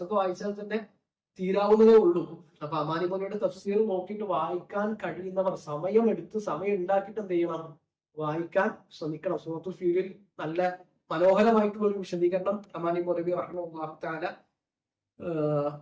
വായിച്ചാൽ തന്നെ തീരാവുന്നതേ ഉള്ളൂ. അപ്പൊ അമാനുമാനവയുടെ തഫ്സീർ നോക്കിയിട്ട് വായിക്കാൻ കഴിയുന്നവർ സമയം ഉണ്ടാക്കിയിട്ട് എന്ത് ചെയ്യണം, വായിക്കാൻ ശ്രമിക്കണം. സൂറത്തുൽ ഫീലിൽ നല്ല മനോഹരമായിട്ടുള്ള ഒരു വിശദീകരണം അമാനി മൗലവി റഹിമഹുല്ലാഹു തആല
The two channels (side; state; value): both; identical; correlation 1.00